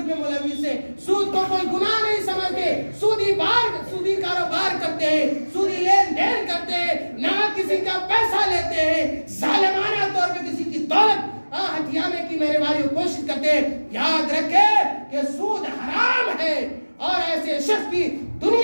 میں ملوث ہیں، سود کو کوئی گناہ نہیں سمجھتے، سودی کاروبار کرتے ہیں، سودی لین دین کرتے ہیں، نہ کسی کا پیسہ لیتے ہیں، ظالمانہ طور پہ کسی کی دولت ہتھیانے کی میرے بھائیوں کوشش کرتے ہیں۔ یاد رکھیں کہ سود حرام ہے اور ایسے شخص کی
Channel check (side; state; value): both; inverted; correlation -1.00